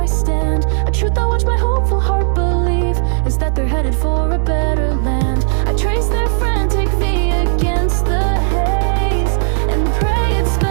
stand. A truth I watch my hopeful heart believe is that they're headed for a better land. I trace their frantic V against the haze and pray it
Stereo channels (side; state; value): left; silent; 62 dB below the other